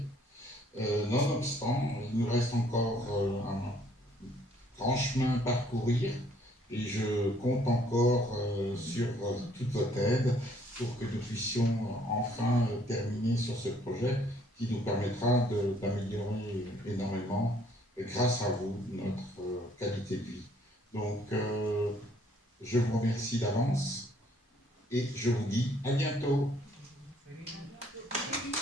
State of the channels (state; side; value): normal; both; correlation 0.63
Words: Nonobstant, il nous reste encore un grand chemin à parcourir, et je compte encore sur toute votre aide pour que nous puissions enfin terminer sur ce projet qui nous permettra d'améliorer énormément, grâce à vous, notre qualité de vie. Donc, je vous remercie d'avance et je vous dis à bientôt.